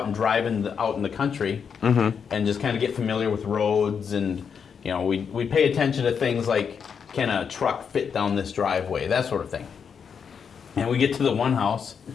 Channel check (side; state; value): right; quieter; 6.7 dB